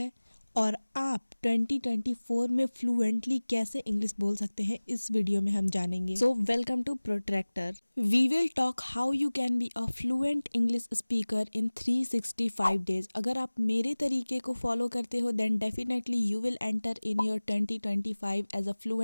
और आप 2024 में फ्लुएंटली कैसे इंग्लिश बोल सकते हैं, इस वीडियो में हम जानेंगे। So welcome to protractor. We will talk how you can be a fluent English speaker in 365 days. अगर आप मेरे तरीके को फॉलो करते हो then definitely you will enter in your 2025 as a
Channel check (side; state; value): both; inverted; correlation -1.00